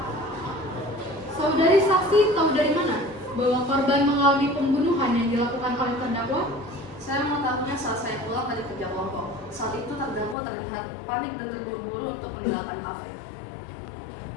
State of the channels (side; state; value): right; drops out; at 10.4 s